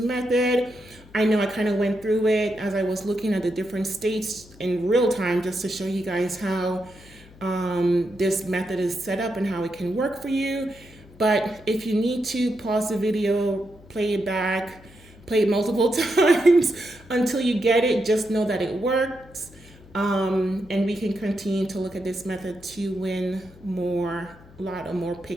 I know I kind of went through it as I was looking at the different states in real time just to show you guys how this method is set up and how it can work for you. But if you need to, pause the video, play it back, play it multiple times until you get it. Just know that it works. And we can continue to look at this method to win more Lotto, more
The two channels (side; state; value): left; noise; hum, 23 dB below the sound